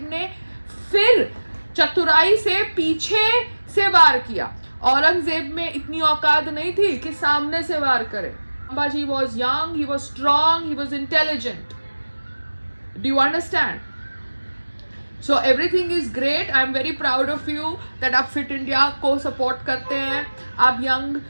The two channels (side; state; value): both; inverted; correlation -1.00